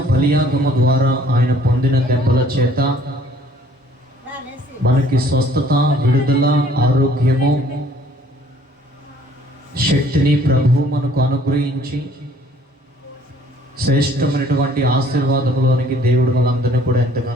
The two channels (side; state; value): both; normal; correlation 0.57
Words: బలియాగము ద్వారా ఆయన పొందిన దెబ్బల చేత మనకి స్వస్థత, విడుదల, ఆరోగ్యము, శక్తిని ప్రభు మనకు అనుగ్రహించి శ్రేష్టమైనటువంటి ఆశీర్వాదములోనికి దేవుడు మనందరినీ కూడా